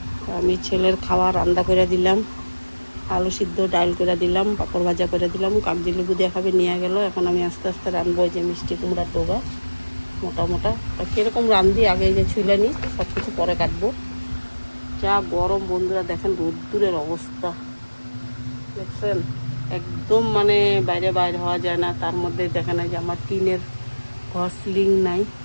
আমি ছেলের খাওয়া রান্না করে দিলাম, আলু সিদ্ধ ডাল করে দিলাম, পাঁপড় ভাজা করে দিলাম, কাগজি লেবু দিয়ে খাবে নিয়ে গেল। এখন আমি আস্তে আস্তে রানবো এই যে মিষ্টি কুমড়ার ডোগা মোটা মোটা। কীরকম রান্ধি আগে যে ছুলে নিই, সব কিছু পরে কাটবো। যা গরম বন্ধুরা, দেখেন রোদ্দুরের অবস্থা দেখছেন, একদম মানে বাইরে বাইরে হওয়া যায় না। তার মধ্যে দেখেন এই যে আমার টিনের ঘর, সিলিং নাই,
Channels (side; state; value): both; inverted; correlation -1.00